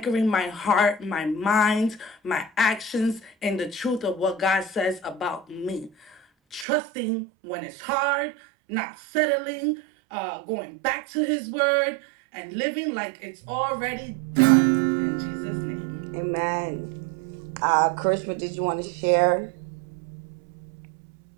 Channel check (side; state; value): left; drops out; at 6.7 s